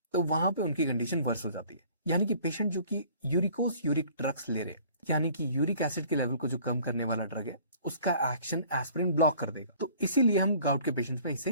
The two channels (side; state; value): both; inverted; correlation -0.52